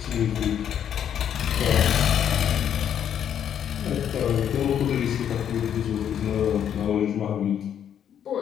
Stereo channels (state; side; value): quieter; right; 9.3 dB